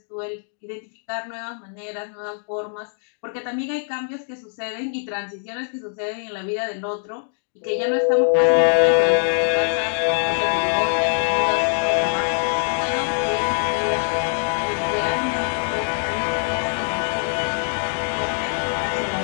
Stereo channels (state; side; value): silent; right; digital silence